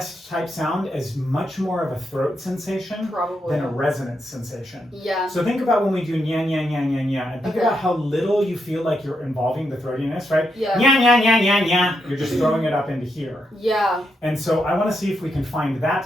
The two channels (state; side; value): normal; both; correlation 0.82